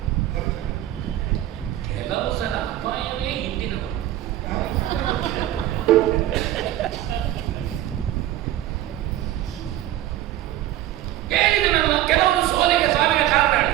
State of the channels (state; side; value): quieter; left; 13.4 dB